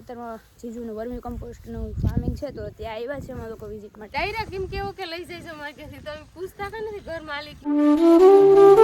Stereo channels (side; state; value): both; identical; correlation 1.00